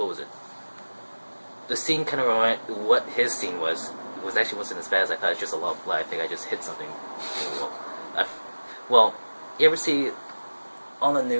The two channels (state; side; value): inverted; both; correlation -1.00